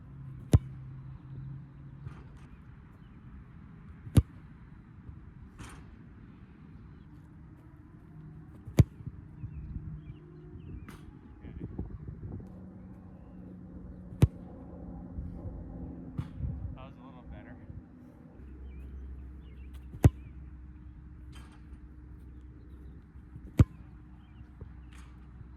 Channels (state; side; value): identical; both; correlation 1.00